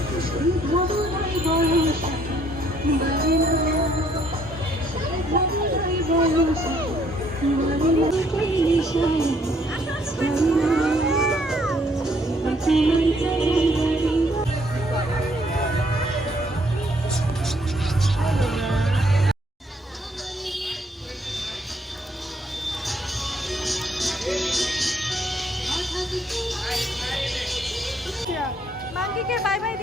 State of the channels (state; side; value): normal; both; correlation 0.67